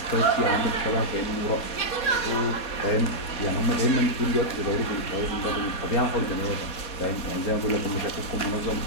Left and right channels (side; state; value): right; late; 4.2 ms